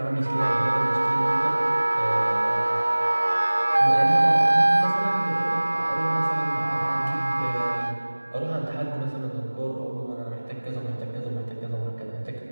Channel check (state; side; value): inverted; both; correlation -1.00